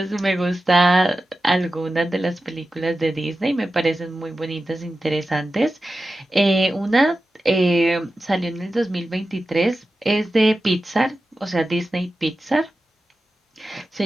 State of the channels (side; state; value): both; normal; correlation 0.93